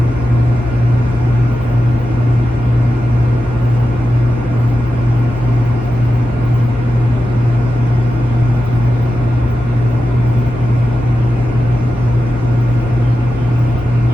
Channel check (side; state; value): both; normal; correlation 0.91